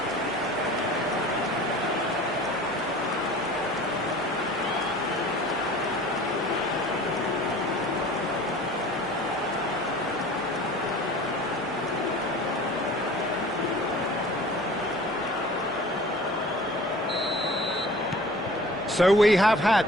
So we have had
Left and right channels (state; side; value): noise; left; hum, 29 dB below the sound